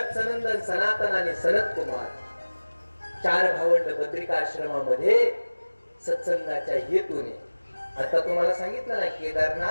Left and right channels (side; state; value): both; inverted; correlation -1.00